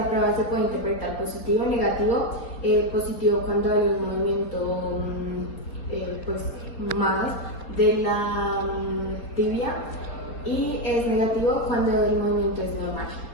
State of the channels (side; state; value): right; late; 4.3 ms